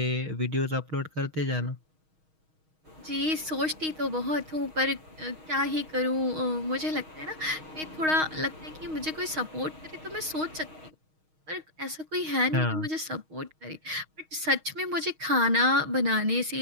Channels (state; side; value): late; left; 6.4 ms